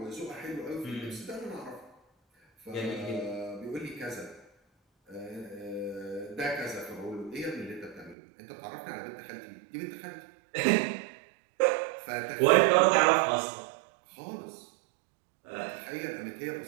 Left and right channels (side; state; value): left; drops out; at 8.2 s